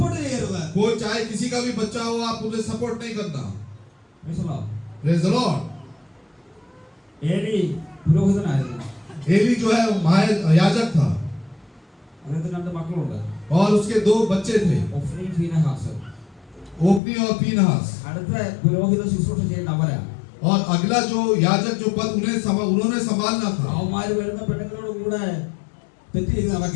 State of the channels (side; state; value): right; drops out; at 17.0 s